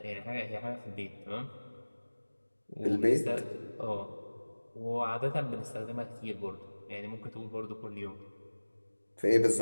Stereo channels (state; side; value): inverted; both; correlation -1.00